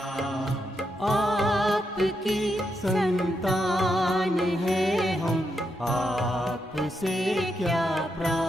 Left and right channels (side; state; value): both; normal; correlation 0.82